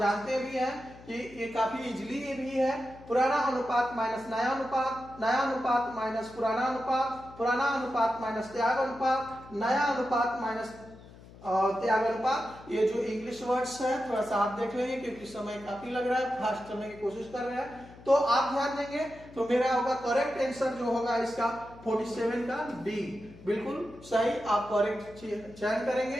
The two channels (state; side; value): noise; left; hum, 20 dB below the sound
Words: जानते भी हैं कि ये काफी इजीली ये भी है, पुराना अनुपात माइनस नया अनुपात, नया अनुपात माइनस पुराना अनुपात, पुराना अनुपात माइनस त्याग अनुपात, नया अनुपात माइनस त्याग अनुपात। ये जो इंग्लिश वर्ड्स है थोड़ा सा आप देख लेंगे क्योंकि समय काफी लग रहा है, फास्ट चलने की कोशिश कर रहे हैं, तो आप ध्यान देंगे। तो मेरा होगा करेक्ट आंसर जो होगा इसका 47 का डी, बिल्कुल सही। आप करेक्ट चयन करेंगे,